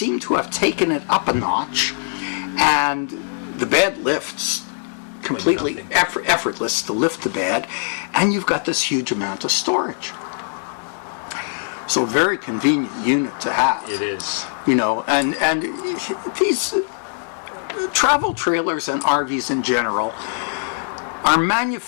to have taken it up a notch, and the bed lifts completely effortless to lift the bed, and you've got this huge amount of storage. So very convenient unit to have. It is. And these travel trailers and RVs in general are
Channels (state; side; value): silent; right; 59 dB below the other